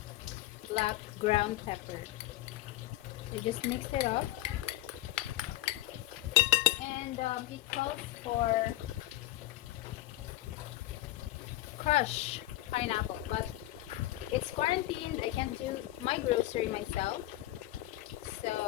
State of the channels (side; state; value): right; quieter; 16.3 dB